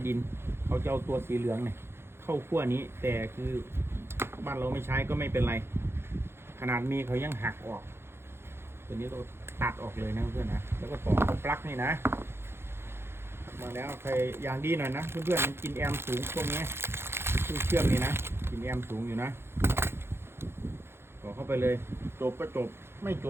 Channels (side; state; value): left; late; 0.12 ms